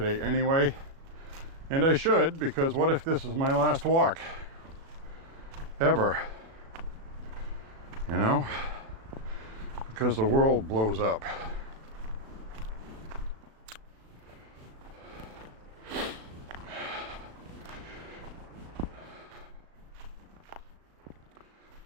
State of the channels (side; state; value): left; late; 37 ms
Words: anyway. And I should, because what if this is my last walk? Ever. You know? Because the world blows up.